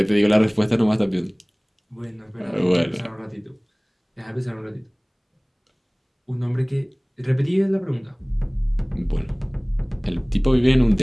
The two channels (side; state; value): both; identical; correlation 1.00